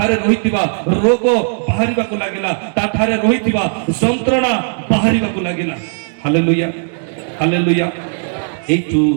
रहितिबा रोग बाहरिबा को लागिला ता ठारे रहितिबा यंत्रणा बाहरिबा को लागिला हालेलुया हालेलुया एतु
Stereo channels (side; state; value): left; silent; 65 dB below the other